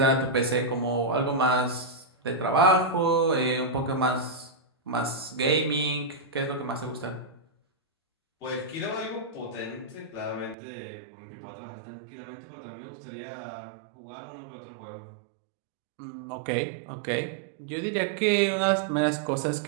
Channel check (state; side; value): drops out; left; at 10.6 s